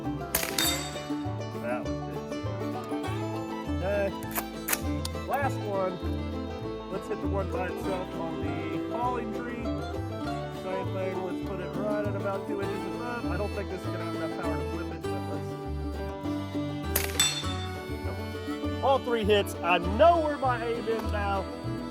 That was good. Okay. Last one. Let's hit the one by itself on the falling tree. Same thing. Let's put it right at about 2 inches above. I don't think this is going to have enough power to flip it, but let's. All 3 hits. I know where my aim is now.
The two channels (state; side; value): identical; both; correlation 1.00